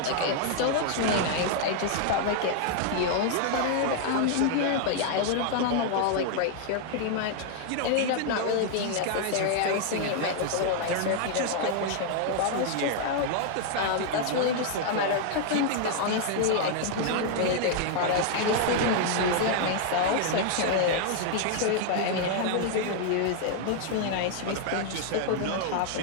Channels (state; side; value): different; both; correlation 0.00